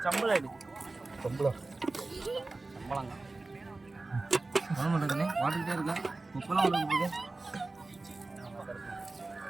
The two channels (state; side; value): quieter; left; 3.3 dB